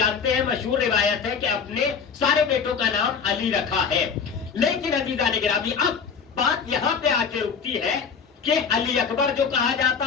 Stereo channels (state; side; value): quieter; right; 6.1 dB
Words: ہیں مشہور روایت ہے کہ اپنے سارے بیٹوں کا نام علی رکھا ہے. لیکن عزیزان گرامی اب بات یہاں پہ آ کے رکتی ہے کہ علی اکبر جو کہا